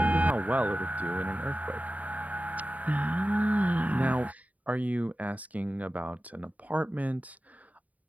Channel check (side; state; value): left; late; 0.072 ms